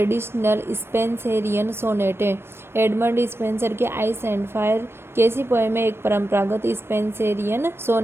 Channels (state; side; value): late; left; 0.12 ms